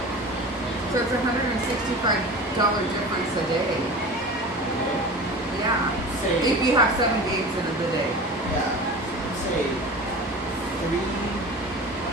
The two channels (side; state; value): both; normal; correlation 0.35